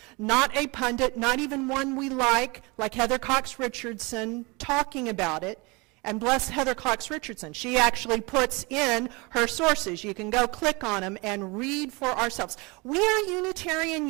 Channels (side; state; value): left; quieter; 26.9 dB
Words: not a pundit, not even one we like Heather Cox Richardson talking about it. And bless Heather Cox Richardson. She actually puts in her sources. You can go click on them and read for ourselves. We are Unitarian